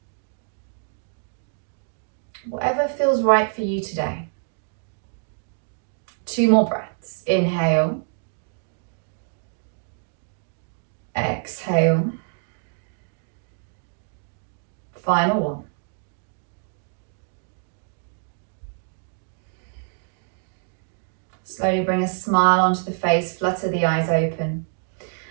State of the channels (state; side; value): silent; left; digital silence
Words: whatever feels right for you today. 2 more breaths. Inhale. Exhale. Final one. Slowly bring a smile onto the face, flutter the eyes open.